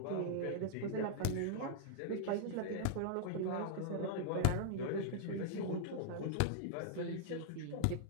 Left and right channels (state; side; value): different; both; correlation -0.02